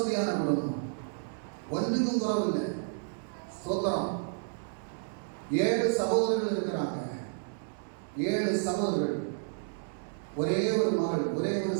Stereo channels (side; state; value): left; silent; digital silence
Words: குடும்பம், ஒன்றுக்கும் குறவில்லை. சோத்திரம். 7 சகோதரர்கள் இருக்கிறாங்க. 7 சகோதரர்கள், ஒரே ஒரு மகள், ஒரே ஒரு